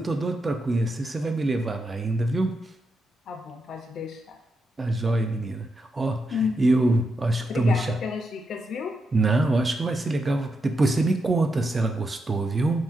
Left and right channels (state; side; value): normal; both; correlation 0.84